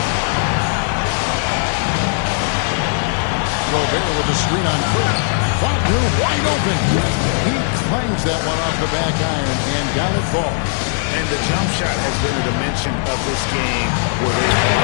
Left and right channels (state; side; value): silent; right; 59 dB below the other